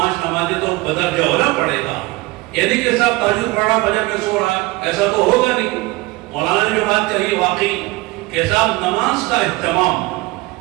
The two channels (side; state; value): left; quieter; 21.5 dB